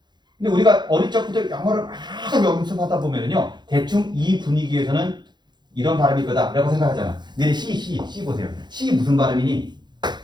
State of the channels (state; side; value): late; left; 0.21 ms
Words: 근데 우리가 어릴 적부터 영어를 막 연습하다 보면은요 대충 이 분위기에서는 이런 발음일 거다라고 생각하잖아. 근데 C 보세요. C 무슨 발음이니?